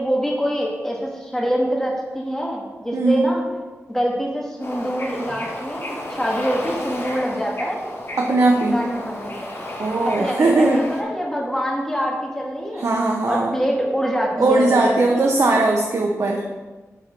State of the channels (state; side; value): normal; both; correlation 0.86